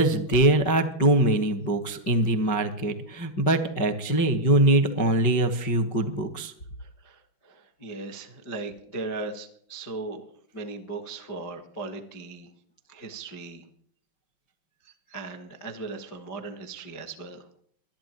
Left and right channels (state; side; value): late; right; 5.4 ms